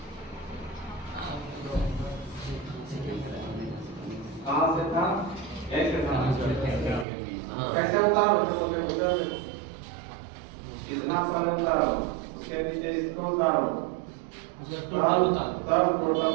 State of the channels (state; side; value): drops out; left; at 7.1 s